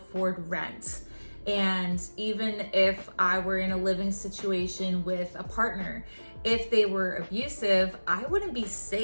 rent. And even if I were in a living situation with a partner, if they were abusive, I wouldn't be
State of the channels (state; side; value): inverted; both; correlation -1.00